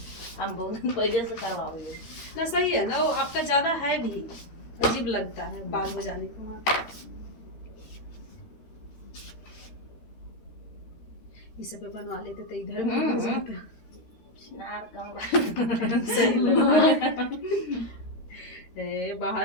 हम बहुत दिन पहले से करवाओगे ना। सही है ना, वो आपका ज्यादा है भी, अजीब लगता है बाल हो जाने के बाद। ये सब बनवा लेते तो इधर भी हो जाता। नार कम सही लगता है।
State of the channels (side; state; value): right; late; 13 ms